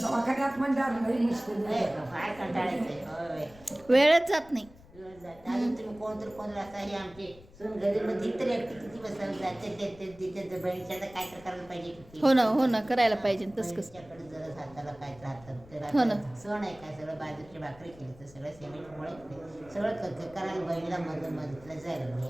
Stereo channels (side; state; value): left; noise; rumble, 22 dB below the sound